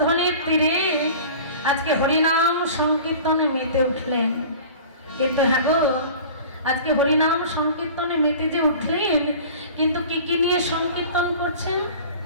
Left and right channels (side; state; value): both; inverted; correlation -0.40